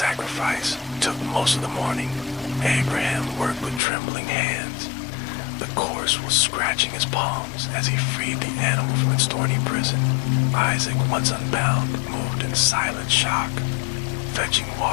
took most of the morning. Abraham worked with trembling hands. The course was scratching his palms as he freed the animal from its thorny prison. Isaac, once unbound, moved in silent shock, fetching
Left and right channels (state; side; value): drops out; right; at 3.8 s